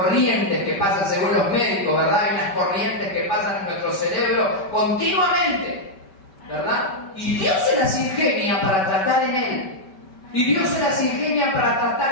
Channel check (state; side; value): late; right; 5.1 ms